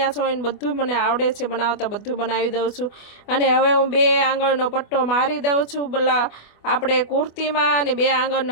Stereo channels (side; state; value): right; late; 24 ms